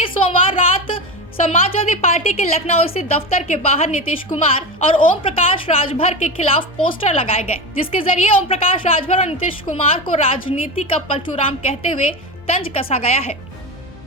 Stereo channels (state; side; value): normal; both; correlation 0.21